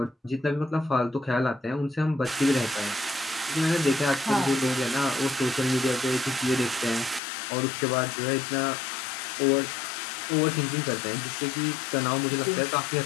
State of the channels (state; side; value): drops out; right; at 7.2 s